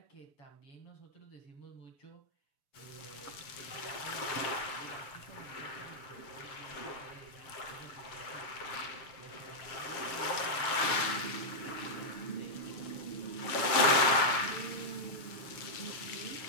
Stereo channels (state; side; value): late; right; 6.8 ms